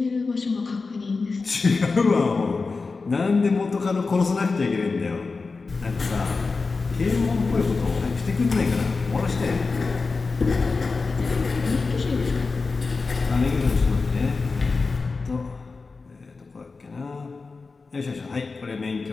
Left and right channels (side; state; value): right; quieter; 4.2 dB